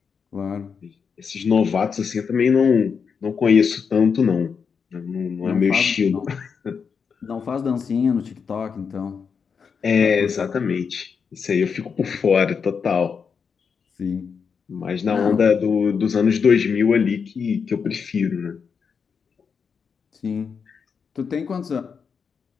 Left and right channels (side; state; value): right; quieter; 6.1 dB